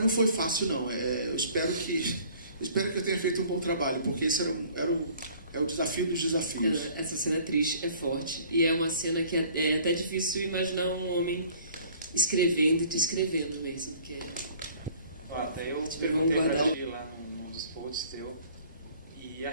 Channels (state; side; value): inverted; both; correlation -0.53